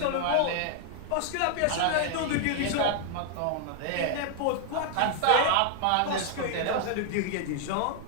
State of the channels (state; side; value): different; both; correlation 0.00